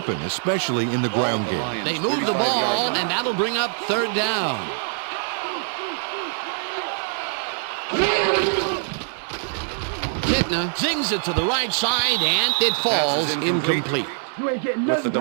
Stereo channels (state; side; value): silent; left; 63 dB below the other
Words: especially in the ground game. They move the ball, and that'll bring up 3rd down. Kitna zings it to the right side, and it falls incomplete. You ain't getting With the